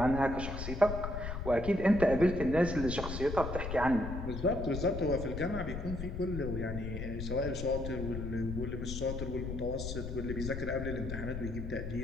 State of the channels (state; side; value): noise; left; rumble, 6 dB below the sound